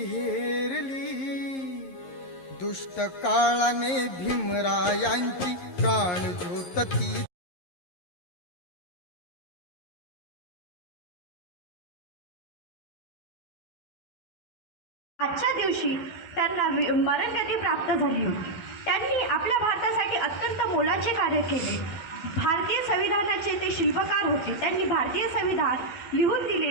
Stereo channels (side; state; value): right; late; 11 ms